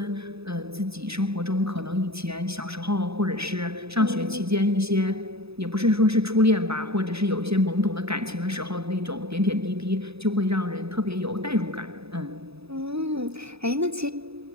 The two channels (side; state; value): left; late; 0.78 ms